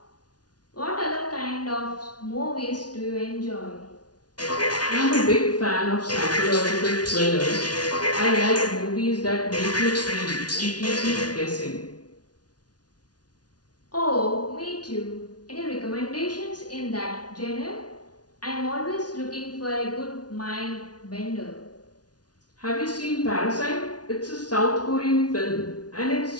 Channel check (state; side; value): late; right; 0.69 ms